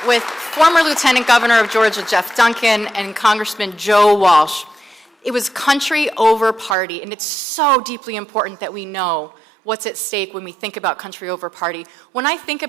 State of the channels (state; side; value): drops out; left; at 6.8 s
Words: with former Lieutenant Governor of Georgia, Jeff Duncan, and Congressman Joe Walsh. It was country over party, and it's so deeply important that we know what's at stake when we think about country over party. When I think